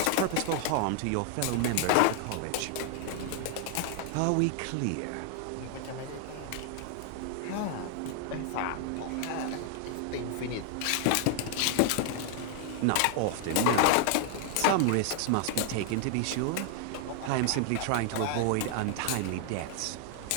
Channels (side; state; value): both; different; correlation 0.00